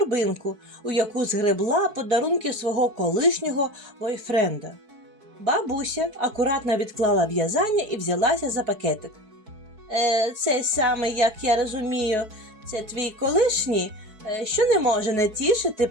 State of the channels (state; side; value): late; left; 4.6 ms